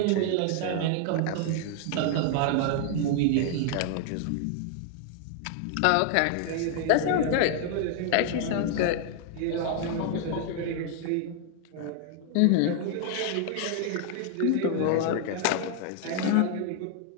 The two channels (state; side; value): different; both; correlation 0.00